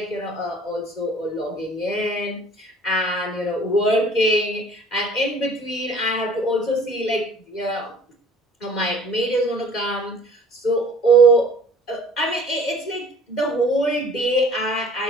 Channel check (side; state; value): both; normal; correlation 0.50